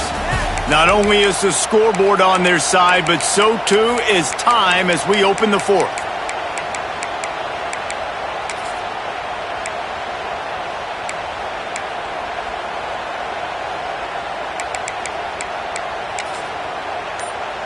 Not only is the scoreboard on their side, but so too is time as we open the 4th.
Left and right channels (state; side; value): identical; both; correlation 1.00